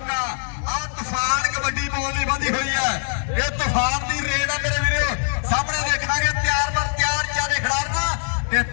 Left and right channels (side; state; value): right; silent; 59 dB below the other